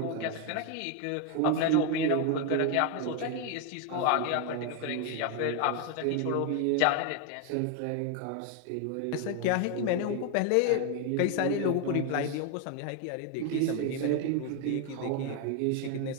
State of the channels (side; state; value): both; different; correlation 0.01